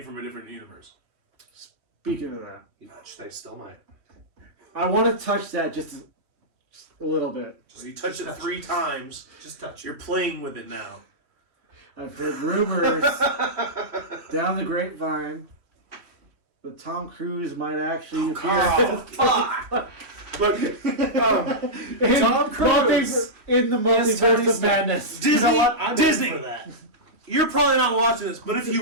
from a different universe. Speaking of that, Which they still might. I want to touch that just a little bit. So you touch it 3 times. Just touch it. You're playing with it now. I've heard rumors down the grapevine that Tom Cruise might actually appear Oh, fuck! Look, in, Tom Cruise. in the Yes, Tony multiverse of Stark. madness. Disney, You know what? I'm in Disney, for that. you're probably not watching this, but if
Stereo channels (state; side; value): late; left; 3.1 ms